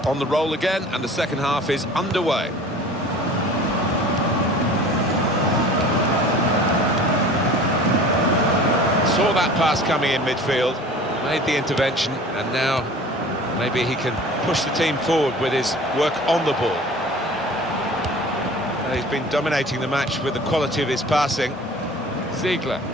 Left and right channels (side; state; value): both; normal; correlation 0.43